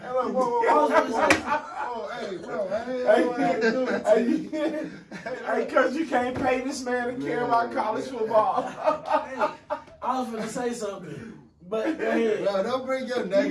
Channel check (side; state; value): both; identical; correlation 1.00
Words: look, whoa. Oh, hey, bro. Hey, cause you can't pay this man to care about college football. Hey, I was going to say something, but go ahead. No, don't bring your